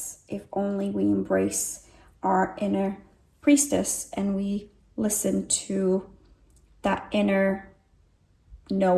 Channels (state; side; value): identical; both; correlation 1.00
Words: if only we embrace our inner priestess and we listen to that inner